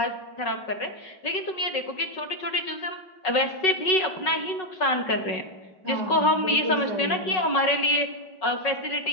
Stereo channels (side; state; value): right; late; 5.4 ms